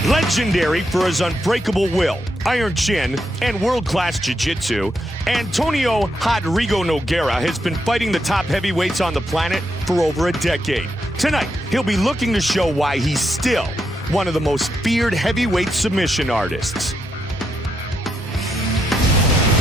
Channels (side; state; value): both; normal; correlation 0.82